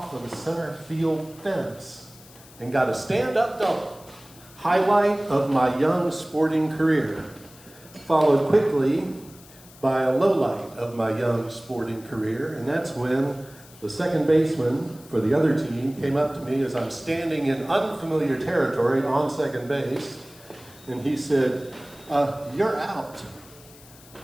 of the center field fence and got a stand-up double. Highlight of my young sporting career. Followed quickly by a lowlight of my young sporting career, and that's when the second baseman for the other team came up to me as I'm standing in unfamiliar territory on second base, and he said, "You're out."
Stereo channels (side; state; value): left; noise; hiss, 22 dB below the sound